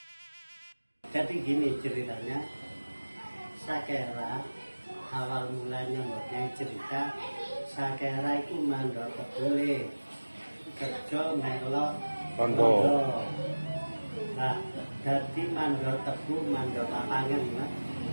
Jadi gini ceritanya, Sakera awal mulanya mempunyai cerita, Sakera itu mandor kebule, kerja melok Tondo. Nah, jadi mandor tebu, mandor lapangan, ya.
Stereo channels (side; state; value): both; inverted; correlation -1.00